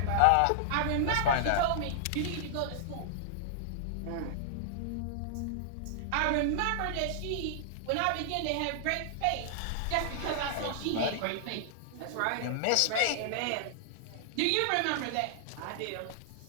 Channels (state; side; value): different; both; correlation -0.01